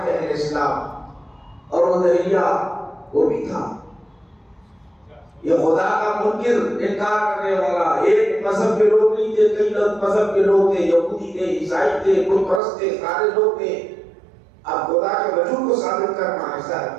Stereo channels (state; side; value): drops out; left; at 12.6 s